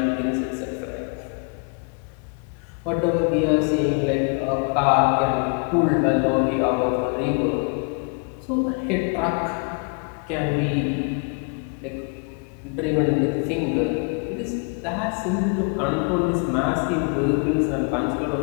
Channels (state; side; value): quieter; right; 37.3 dB